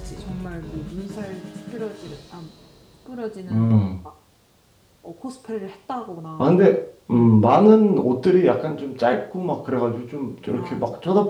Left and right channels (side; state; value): both; identical; correlation 1.00